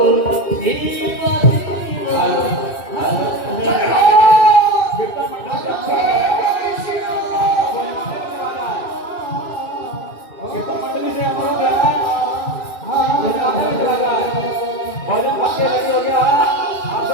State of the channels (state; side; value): late; right; 2.6 ms